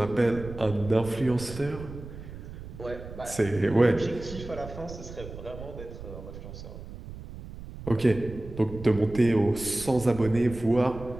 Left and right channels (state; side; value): noise; right; rumble, 12 dB below the sound